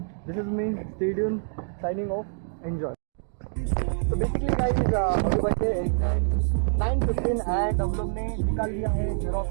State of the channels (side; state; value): left; silent; digital silence